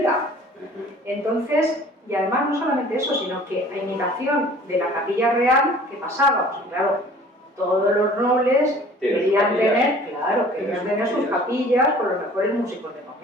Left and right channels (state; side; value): normal; both; correlation 0.49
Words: Entonces, y además no solamente eso, sino que a imitación de la capilla real, ¿qué pasaba? Pues claro, todos los nobles querían tener sus capillas con los mejores músicos del